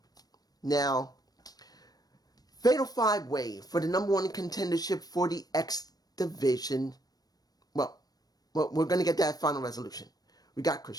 Now, Fatal 5-Way for the number 1 contendership for the X Division. Well, we're going to get that Final Resolution. We got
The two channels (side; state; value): right; late; 0.19 ms